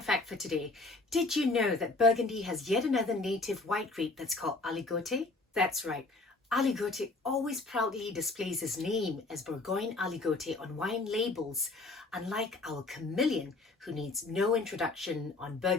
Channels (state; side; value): quieter; right; 3.3 dB